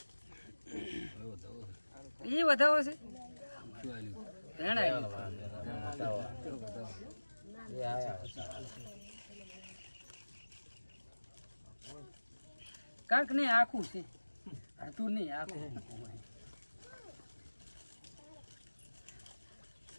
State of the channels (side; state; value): both; inverted; correlation -1.00